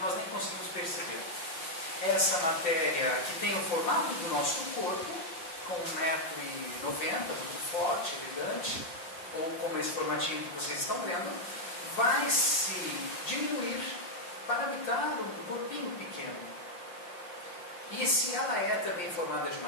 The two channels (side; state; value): right; late; 5.8 ms